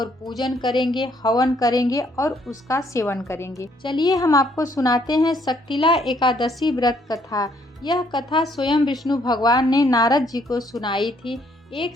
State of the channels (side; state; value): both; normal; correlation 0.68